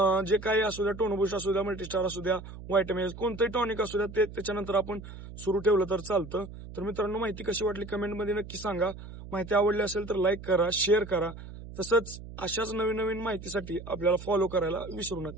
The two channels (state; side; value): noise; right; hum, 13 dB below the sound